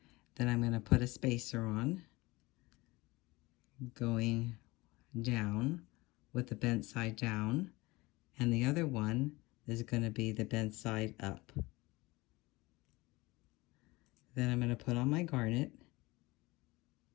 Then I'm going to put a spacer on, going down with the bent side down, and the other one is going to be the bent side up. Then I'm going to put on my garnet.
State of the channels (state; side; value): quieter; right; 21.9 dB